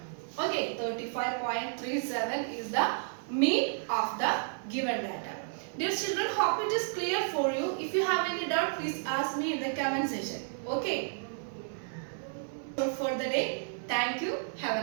Okay, 35.37 is the mean of the given data. Dear children, hope it is clear for you. If you have any doubt, please ask me in the comment section. Okay. For the day, thank you.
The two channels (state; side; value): silent; left; 56 dB below the other